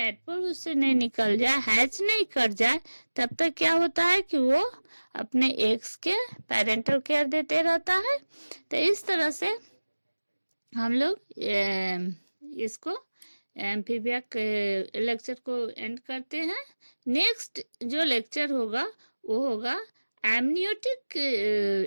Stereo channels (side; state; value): both; inverted; correlation -1.00